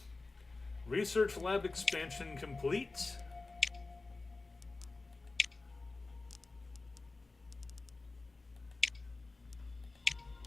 Research lab expansion complete.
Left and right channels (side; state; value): right; quieter; 3.5 dB